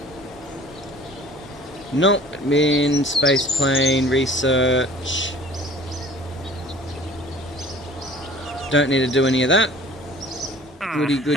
Nope, admin, space plane, research. Don't need to do any of that. Goody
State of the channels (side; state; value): both; normal; correlation 0.49